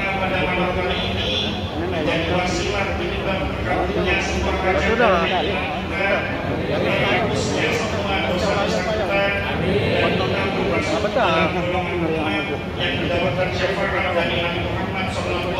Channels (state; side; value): identical; both; correlation 1.00